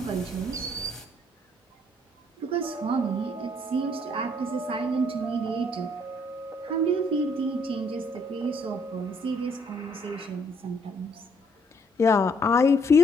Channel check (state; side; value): normal; both; correlation 0.66